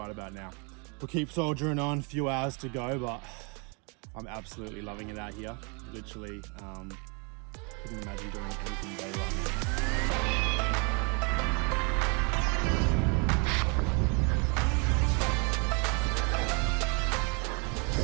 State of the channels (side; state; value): left; quieter; 33.5 dB